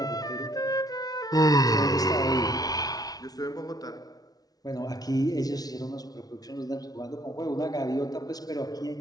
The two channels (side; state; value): right; late; 0.18 ms